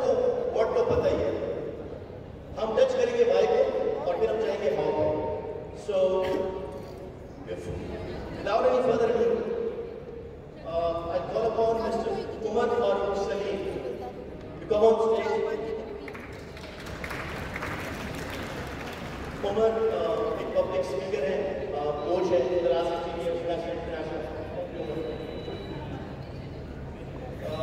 व्हाट तो पता ही है, हम टच करेंगे वाई को और फिर हम जाएंगे हाउ को। सो without any further ado, I call upon Mr. Umar Farooq Salim to come on stage. Umar एक पब्लिक स्पीकर है, कोच है, international.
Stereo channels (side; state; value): both; identical; correlation 1.00